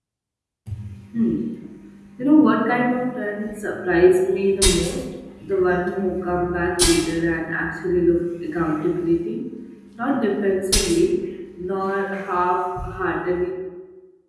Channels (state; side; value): identical; both; correlation 1.00